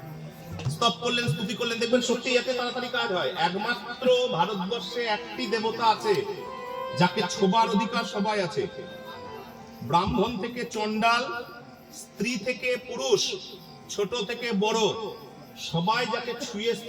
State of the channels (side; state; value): both; identical; correlation 1.00